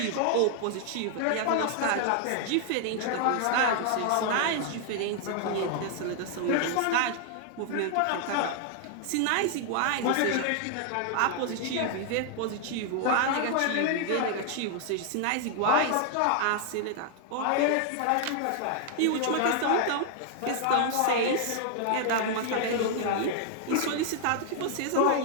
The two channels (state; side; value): different; both; correlation 0.00